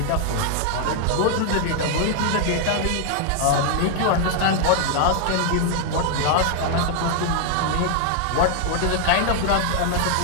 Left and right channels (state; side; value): different; both; correlation 0.00